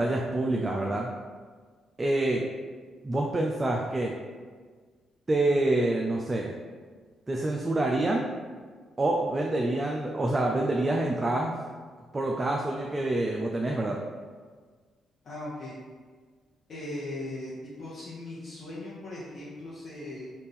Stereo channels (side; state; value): both; normal; correlation 0.85